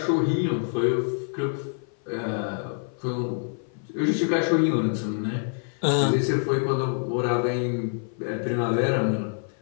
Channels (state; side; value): silent; right; 55 dB below the other